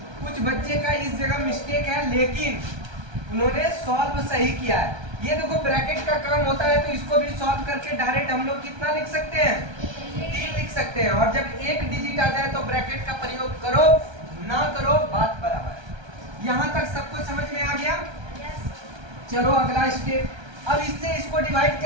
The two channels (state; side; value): late; left; 1.3 ms